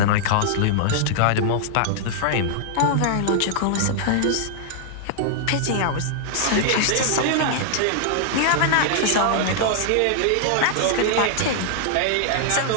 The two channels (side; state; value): both; different; correlation -0.01